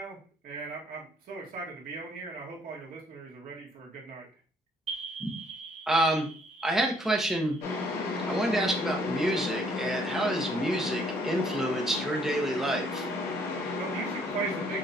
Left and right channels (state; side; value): normal; both; correlation 0.64